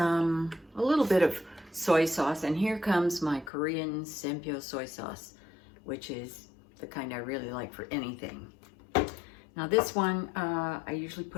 little bit of soy sauce. And here comes my Korean Sempyo soy sauce, which is the kind I really like for anything. Now this one, I usually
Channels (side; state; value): right; drops out; at 3.5 s